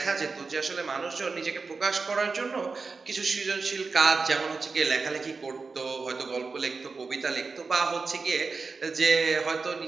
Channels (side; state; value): left; quieter; 4.4 dB